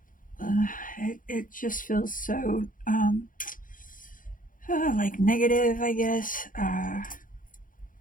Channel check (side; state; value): right; late; 0.39 ms